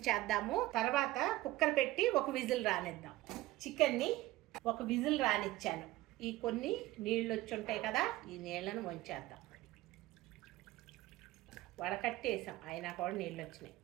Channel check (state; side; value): quieter; left; 17.2 dB